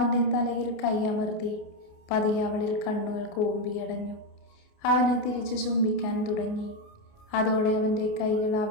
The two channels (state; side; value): late; right; 29 ms